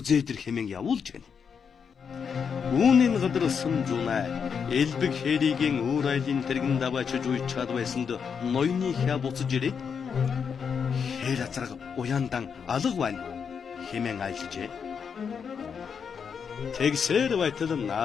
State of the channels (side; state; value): right; quieter; 6.6 dB